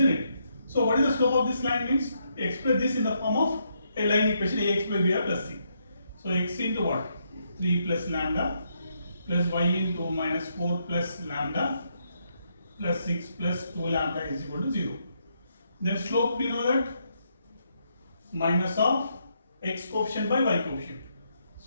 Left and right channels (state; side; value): inverted; both; correlation -0.77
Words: it? So what is the slope of this line means? Express this in the form of a line equation ax plus b plus c. So x into what? 3 plus lambda plus y into minus 4 plus lambda plus 6 plus 2 lambda is equal to 0. Then slope we know that minus of x coefficient by y coefficient.